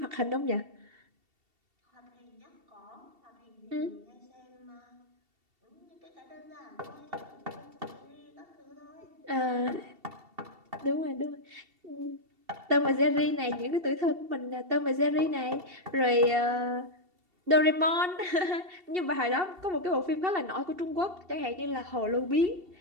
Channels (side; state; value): left; late; 2.7 ms